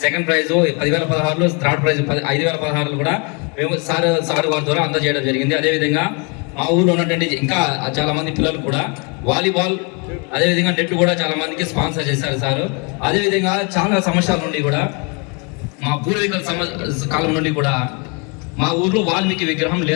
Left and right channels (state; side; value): quieter; right; 33.4 dB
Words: సెకండ్ ప్రైజ్ 10,016లో, థర్డ్ ప్రైజ్ 5,016లో కూడా మేము సార్ వారి ద్వారా అందజేయడం జరిగింది. అదేవిధంగా మా ఊళ్ళో ఉన్నటువంటి ఇంకా చాలా మంది పిల్లలు కూడా వాలీబాల్ అదేవిధంగా నెట్ కూడా చాలా మందికి స్పాన్సర్ చేశారు సార్. అదేవిధంగా చాలా సంవత్సరాల నుండి కూడా మా పూర్వీకుల కాలం నుండి కూడా మా ఊర్లో వాల్మీకి విగ్రహం